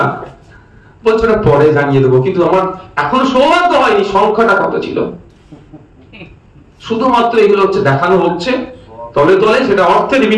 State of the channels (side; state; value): both; identical; correlation 1.00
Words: বলছে ওটা পরে জানিয়ে দেবো। কিন্তু আমার এখনো সৌভাগ্য হয়নি সংখ্যাটা কত ছিল। শুধুমাত্র এগুলো হচ্ছে দেখানো হচ্ছে, তলে তলে সেটা অর্থের